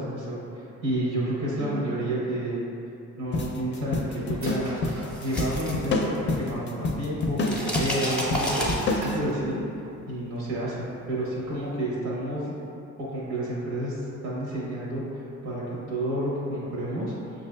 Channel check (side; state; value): both; normal; correlation 0.34